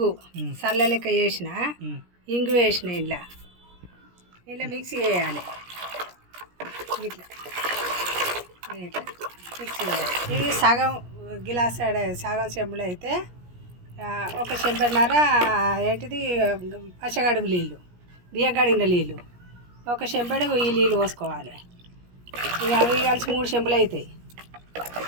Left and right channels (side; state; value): left; late; 17 ms